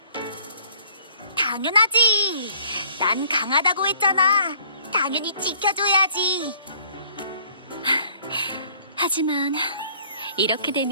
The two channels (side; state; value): both; inverted; correlation -0.57